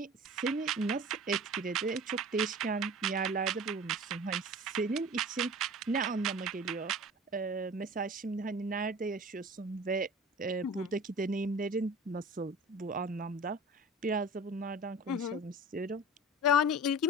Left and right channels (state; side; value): normal; both; correlation 0.39